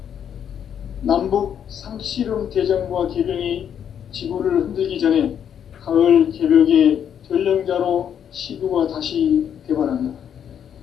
남북 상씨름 대전과 계병이 지구를 흔들기 전에 가을 개벽의 전령자로 시구가 다시 개발한다.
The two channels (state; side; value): quieter; right; 8.8 dB